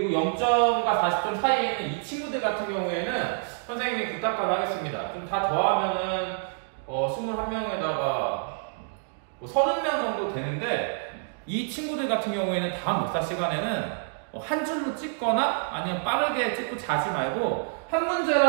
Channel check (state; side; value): silent; left; digital silence